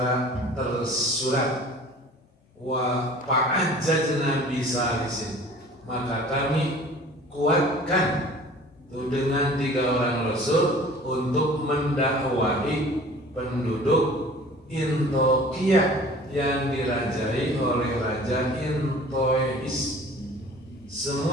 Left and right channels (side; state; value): both; normal; correlation 0.46